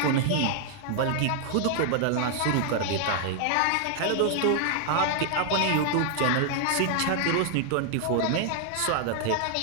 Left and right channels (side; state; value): both; different; correlation 0.00